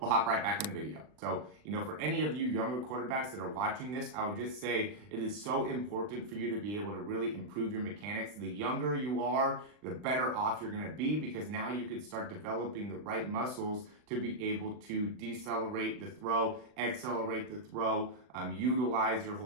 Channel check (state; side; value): late; left; 39 ms